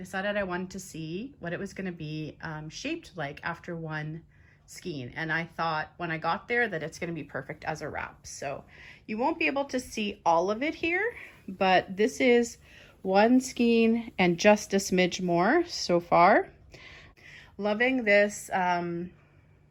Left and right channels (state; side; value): identical; both; correlation 1.00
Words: I wanted to see what it was going to be shaped like after one skein, and I thought when I got there that it's going to be perfect as a wrap. So you won't be able to see all of it here, but this is one skein and just a smidge more so far. Loving this